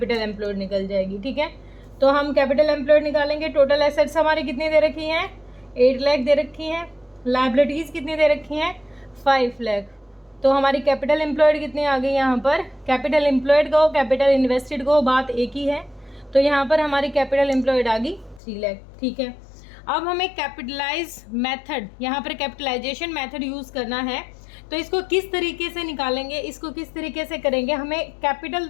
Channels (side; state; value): right; drops out; at 18.4 s